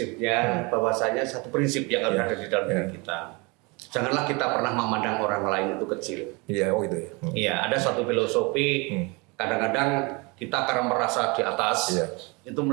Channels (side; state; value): left; quieter; 27.9 dB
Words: bahwasanya satu prinsip yang harus ada di dalam diri kita. Janganlah kita pernah memandang orang lain itu kecil. Iya, gitu ya. Iya, ada suatu filosofi. Kadang-kadang kita karena merasa di atas, itu